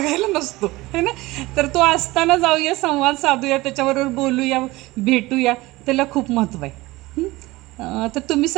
नसतो, है ना. तर तो असताना जाऊया, संवाद साधूया, त्याच्याबरोबर बोलूया, भेटूया, त्याला खूप महत्त्व आहे. तर तुम्ही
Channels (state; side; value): quieter; left; 20.1 dB